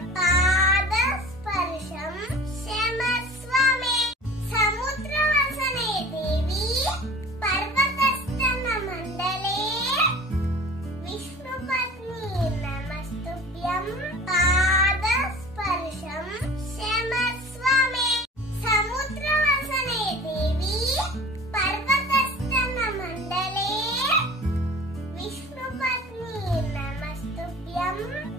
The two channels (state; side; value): normal; both; correlation 0.42